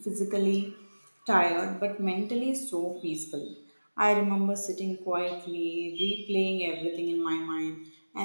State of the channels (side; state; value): both; inverted; correlation -1.00